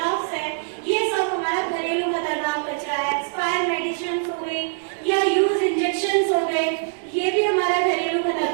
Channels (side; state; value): left; silent; digital silence